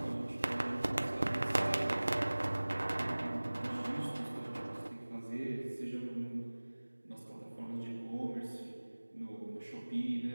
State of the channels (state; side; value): inverted; both; correlation -1.00